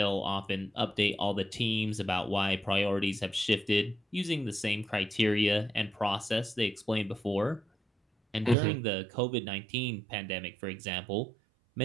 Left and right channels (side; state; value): left; drops out; at 8.6 s